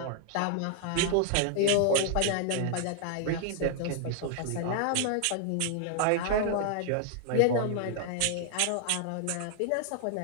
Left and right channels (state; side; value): different; both; correlation 0.00